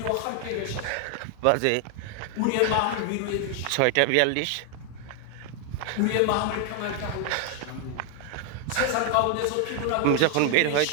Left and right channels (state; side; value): different; both; correlation 0.00